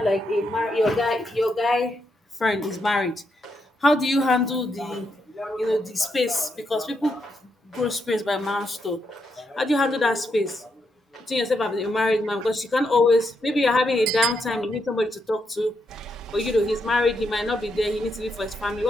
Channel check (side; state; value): both; normal; correlation 0.80